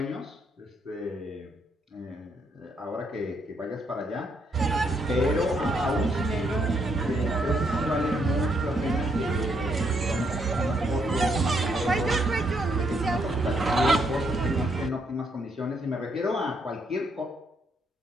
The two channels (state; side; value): normal; both; correlation 0.74